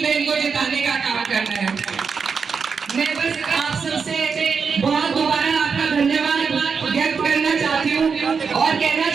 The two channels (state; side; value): quieter; left; 5.7 dB